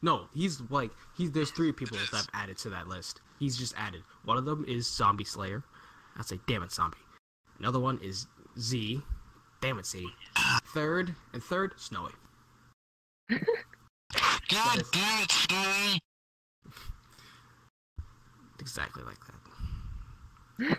3 people that I've added to that list. He's just added. One of them is Zombie Slayer. I'd say, damn it, Zombie. Another one is Z. Damn it, Z. Third, Snowy. God damn it, Snowy! Exactly like that.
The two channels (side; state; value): both; identical; correlation 1.00